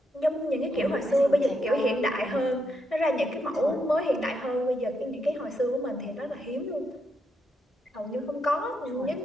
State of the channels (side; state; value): both; normal; correlation 0.80